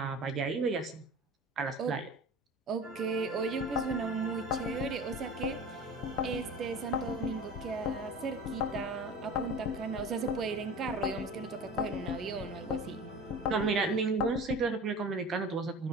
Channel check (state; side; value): normal; both; correlation 0.36